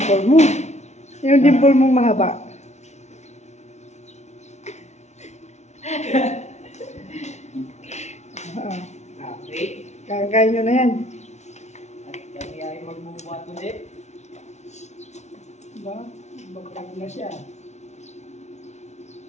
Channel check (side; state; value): right; late; 0.32 ms